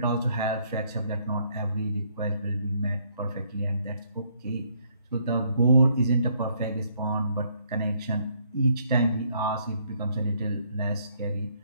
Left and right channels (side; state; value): both; inverted; correlation -0.69